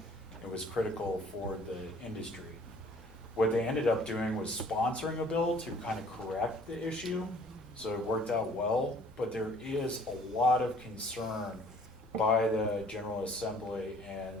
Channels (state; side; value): normal; both; correlation 0.55